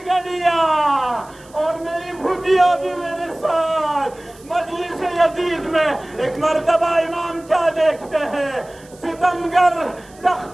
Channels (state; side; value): noise; right; hiss, 26 dB below the sound